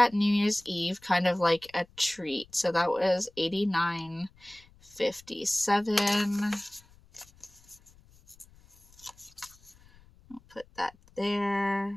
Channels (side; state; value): left; noise; rumble, 27 dB below the sound